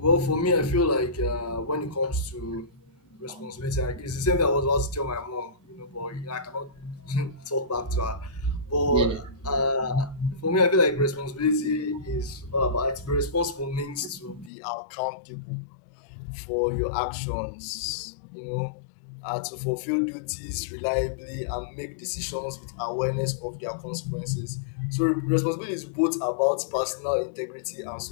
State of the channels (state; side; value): drops out; right; at 14.5 s